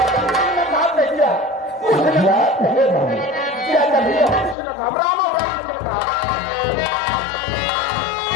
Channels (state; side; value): drops out; right; at 4.5 s